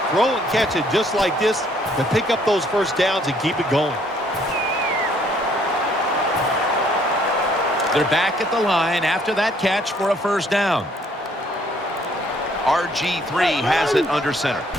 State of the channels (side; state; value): both; normal; correlation 0.64